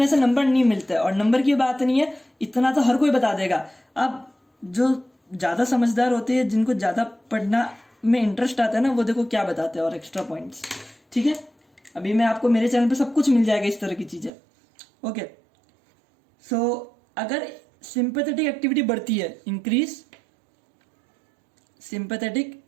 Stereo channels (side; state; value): left; drops out; at 14.3 s